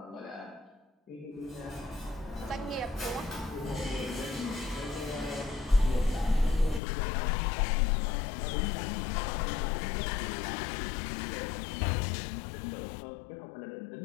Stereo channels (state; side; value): drops out; right; at 6.8 s